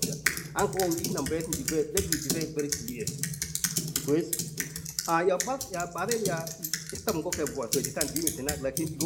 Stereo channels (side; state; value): both; identical; correlation 1.00